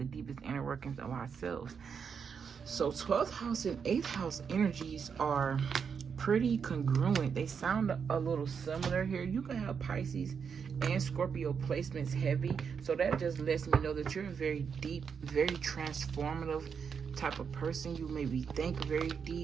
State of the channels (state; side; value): quieter; left; 6.5 dB